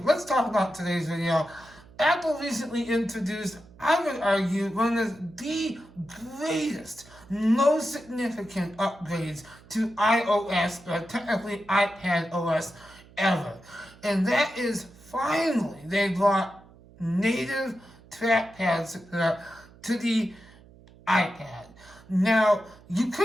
let's talk about today's video. Apple recently introduced, I would argue, one of the greatest, most significant upgrades to iOS, or technically iPad OS, ever. And that is finally they brought native trackpad support to the iPad. Now, you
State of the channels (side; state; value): right; noise; hum, 24 dB below the sound